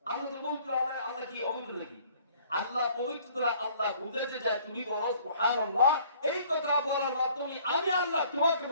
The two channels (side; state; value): both; inverted; correlation -0.57